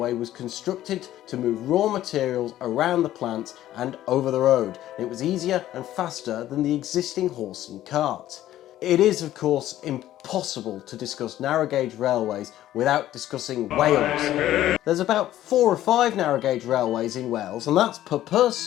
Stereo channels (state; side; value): quieter; right; 13.4 dB